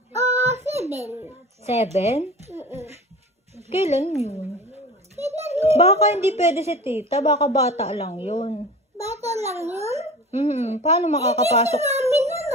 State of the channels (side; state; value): both; normal; correlation 0.35